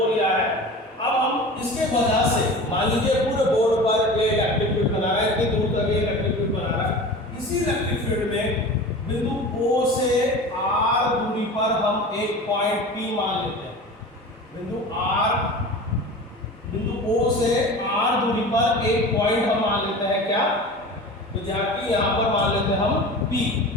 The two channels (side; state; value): both; normal; correlation 0.35